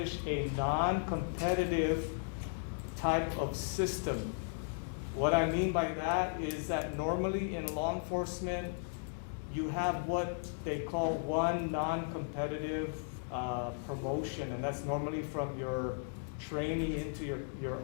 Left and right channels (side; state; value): right; silent; digital silence